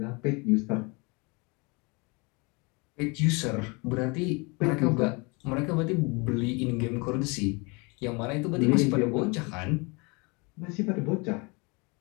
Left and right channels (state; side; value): quieter; right; 29.2 dB